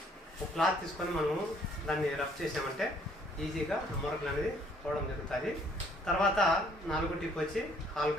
ఒక క్లాత్ తీసుకొని మనము దాన్ని రబ్ చేసామంటే ఈజీగా మరకలు అనేది పోవడం జరుగుతుంది. తర్వాత 4వ టిప్ వచ్చి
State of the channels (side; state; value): both; normal; correlation 0.62